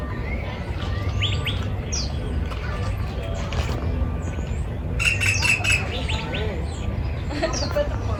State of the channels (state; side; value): identical; both; correlation 1.00